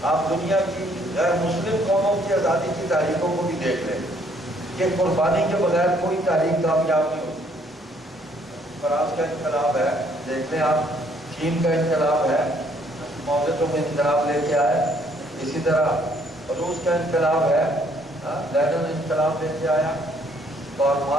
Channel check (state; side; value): normal; both; correlation 0.65